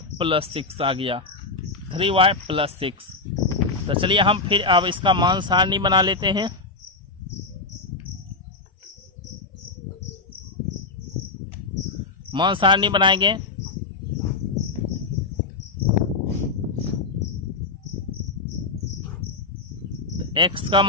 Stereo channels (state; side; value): quieter; right; 3.8 dB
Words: + 6 आ गया, 3y + 6। तो चलिए हम फिर अब इसका मान सारणी बना लेते हैं। मान सारणी बनाएंगे। x का